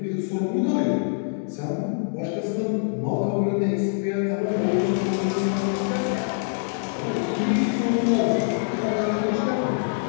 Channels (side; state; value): right; silent; digital silence